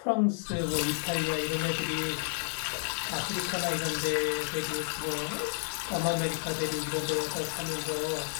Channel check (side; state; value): right; silent; digital silence